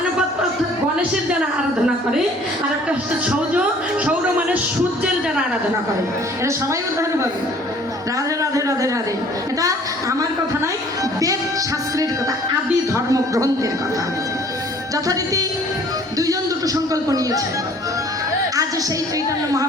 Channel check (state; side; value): normal; both; correlation 0.54